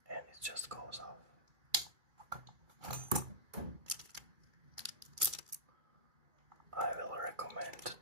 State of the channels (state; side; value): late; left; 2.4 ms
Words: and it just goes off. I will recommend